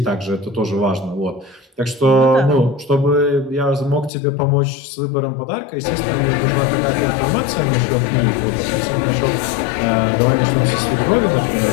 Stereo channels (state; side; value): drops out; right; at 4.1 s